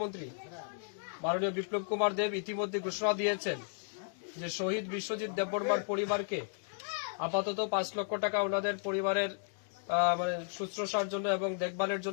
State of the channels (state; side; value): silent; right; digital silence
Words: মাননীয় বিপ্লব কুমার দেব ইতিমধ্যে ঘোষণা দিয়েছেন যে শহীদ বিশ্বজিৎ দেববর্মার পরিবারকে আপাতত 5 লক্ষ টাকা ওনাদের পরিবারের শুশ্রূষার জন্য এবং দেখভালের